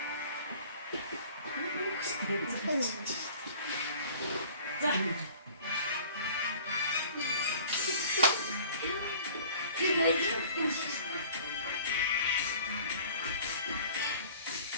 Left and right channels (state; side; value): inverted; both; correlation -0.48